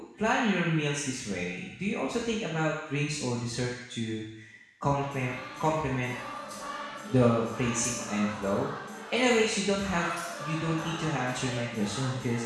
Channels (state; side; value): identical; both; correlation 1.00